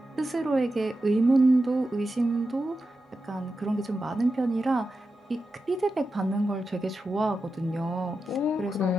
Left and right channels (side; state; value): both; normal; correlation 0.90